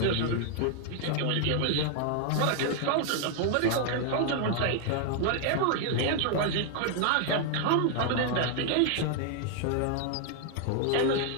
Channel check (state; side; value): different; both; correlation 0.00